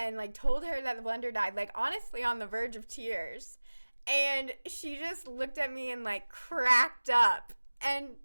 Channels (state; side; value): inverted; both; correlation -1.00